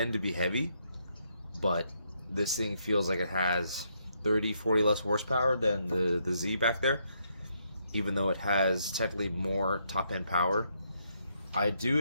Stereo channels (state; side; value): inverted; both; correlation -0.76